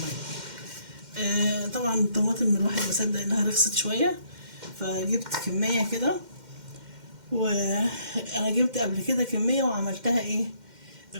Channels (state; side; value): late; left; 2.1 ms